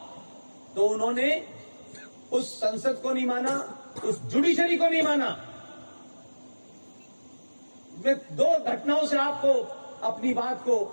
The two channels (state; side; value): inverted; both; correlation -1.00